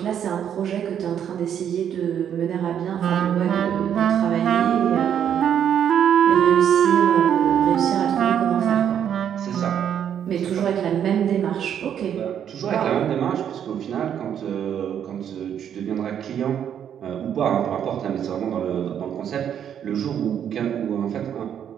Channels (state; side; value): quieter; left; 9.1 dB